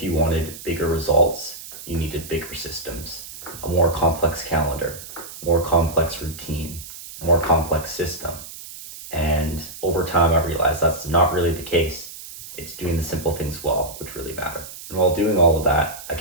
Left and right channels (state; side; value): noise; right; hiss, 14 dB below the sound